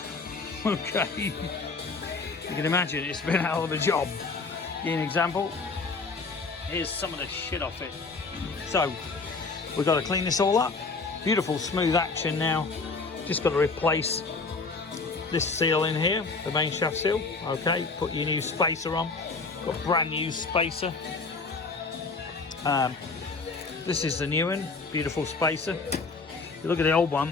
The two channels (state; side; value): quieter; right; 4.1 dB